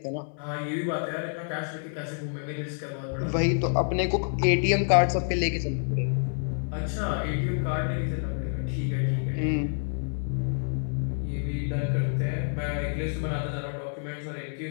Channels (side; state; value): right; silent; 59 dB below the other